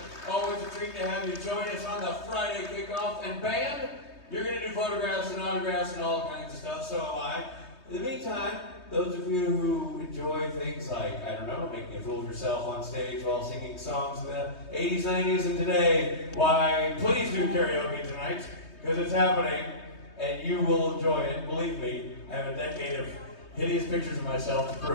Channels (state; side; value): late; right; 3.2 ms